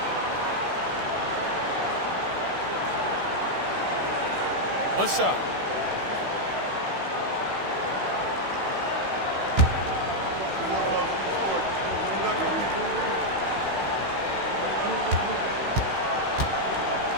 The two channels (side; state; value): left; late; 16 ms